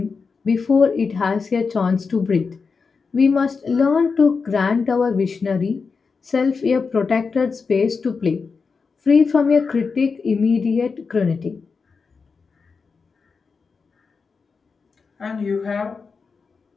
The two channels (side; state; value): right; quieter; 5.0 dB